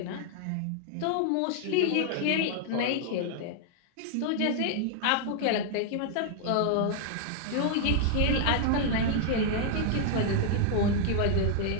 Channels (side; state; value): both; different; correlation 0.00